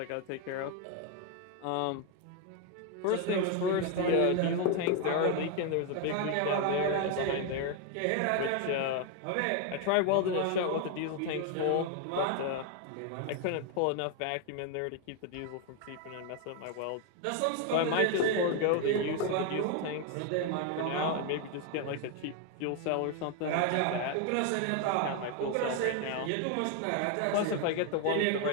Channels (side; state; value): both; different; correlation 0.01